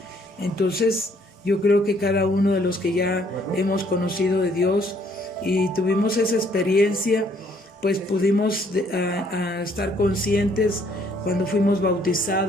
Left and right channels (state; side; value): normal; both; correlation 0.65